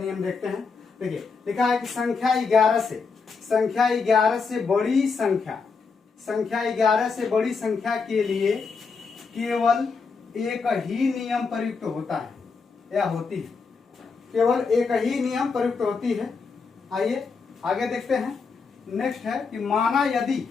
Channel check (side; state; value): right; quieter; 4.9 dB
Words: देखते हैं। देखिए लिखा है कि संख्या 11 से बड़ी संख्या के लिए केवल एक ही नियम प्रयुक्त होता है या होती है। केवल एक ही नियम प्रयुक्त होती है। आइए आगे देखते हैं। नेक्स्ट है कि